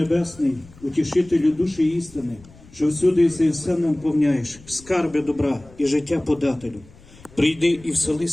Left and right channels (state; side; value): noise; left; rumble, 23 dB below the sound